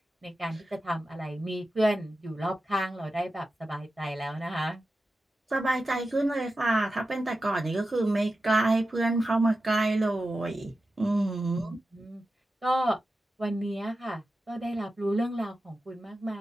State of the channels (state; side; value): normal; both; correlation 0.92